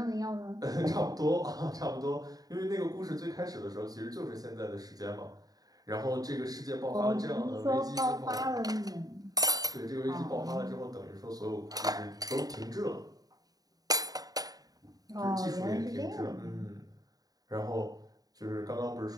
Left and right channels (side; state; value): left; late; 0.18 ms